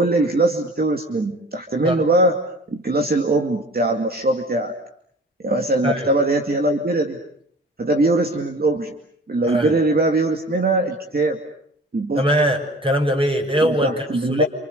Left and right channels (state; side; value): normal; both; correlation 0.44